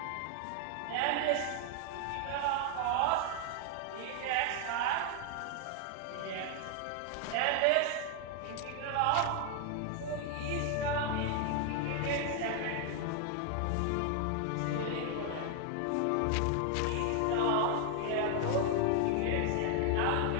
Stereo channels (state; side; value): different; both; correlation 0.00